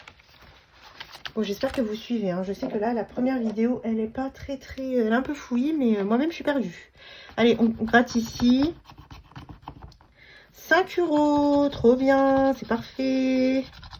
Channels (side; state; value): both; identical; correlation 1.00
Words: Bon, j'espère que vous suivez. Hein. Je sais que là, la première vidéo, elle est pas très... Elle est un peu fouillie, mais moi-même, je suis perdue. Allez, on gratte ici. 5 euros. Trop bien. C'est parfait.